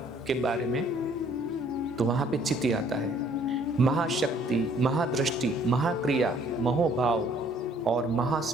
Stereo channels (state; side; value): normal; both; correlation 0.60